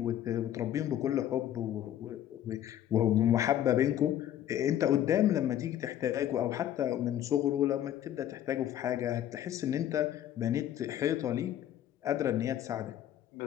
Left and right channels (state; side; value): quieter; right; 11.4 dB